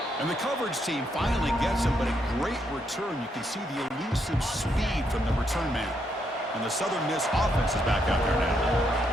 And the coverage team finally gets him, but a great return. You can see the elusive speed from the return man. And the Southern Miss offense is back out there now.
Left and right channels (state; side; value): normal; both; correlation 0.77